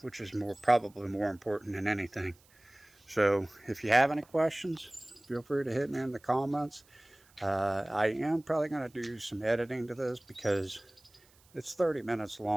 which is probably more important than anything. So if you have any questions, feel free to hit me in the comments. I am probably going to do some editing to this because it's 30 minutes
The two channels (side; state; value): right; noise; hiss, 30 dB below the sound